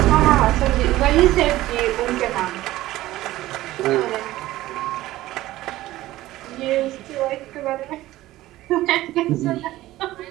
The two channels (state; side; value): quieter; left; 16.2 dB